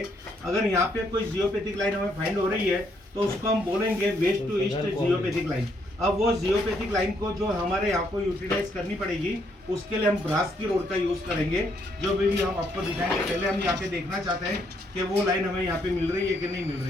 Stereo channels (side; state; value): both; normal; correlation 0.72